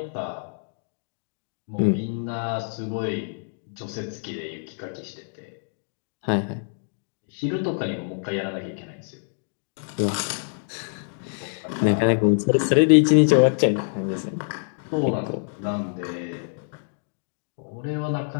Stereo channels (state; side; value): silent; right; digital silence